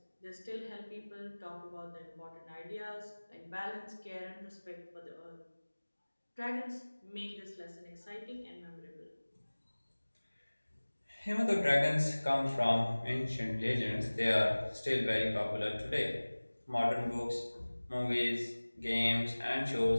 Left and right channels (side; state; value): both; inverted; correlation -1.00